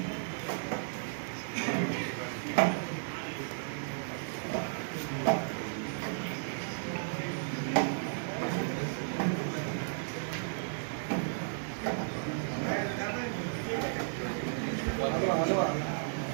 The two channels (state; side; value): silent; left; digital silence